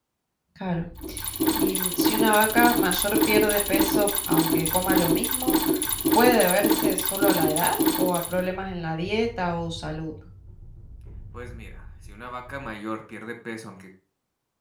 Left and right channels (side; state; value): both; identical; correlation 1.00